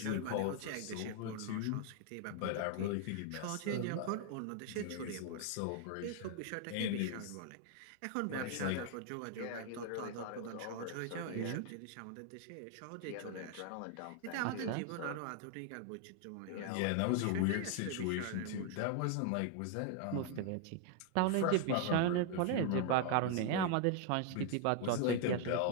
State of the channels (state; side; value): different; both; correlation 0.00